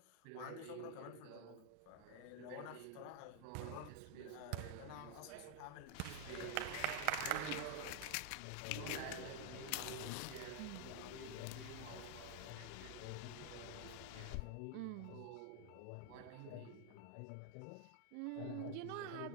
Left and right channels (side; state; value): both; different; correlation 0.00